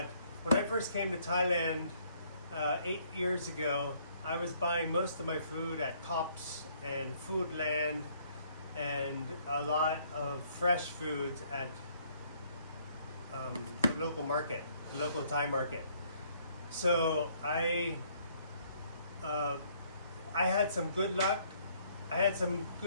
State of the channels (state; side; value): inverted; both; correlation -0.65